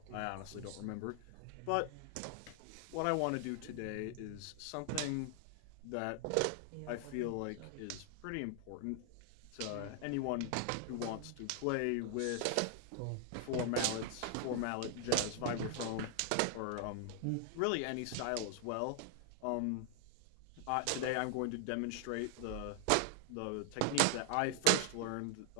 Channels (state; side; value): different; both; correlation 0.00